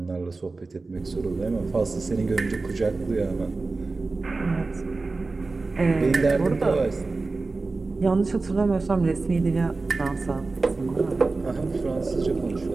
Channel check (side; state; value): left; quieter; 3.7 dB